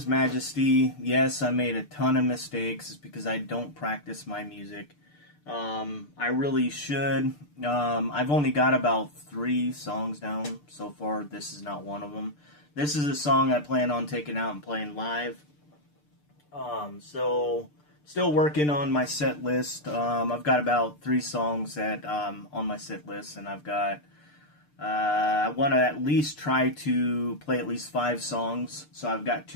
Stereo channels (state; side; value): late; right; 6.8 ms